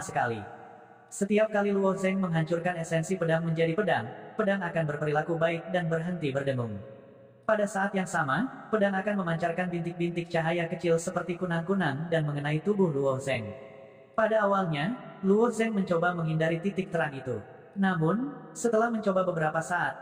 sekali. Setiap kali Luo Zeng menghancurkan esensi pedang menjadi pedang, pedang akan berperilaku baik dan berhenti berdengung. Pada saat yang sama, pedang akan memancarkan bintik-bintik cahaya kecil seperti kunang-kunang dan mengenai tubuh Luo Zeng. Pada awalnya, Luo Zeng mencoba menghindari titik terang itu. Namun, setelah mencoba beberapa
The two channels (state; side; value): identical; both; correlation 1.00